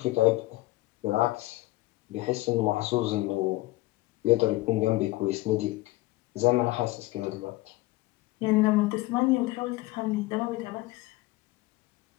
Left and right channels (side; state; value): right; quieter; 19.7 dB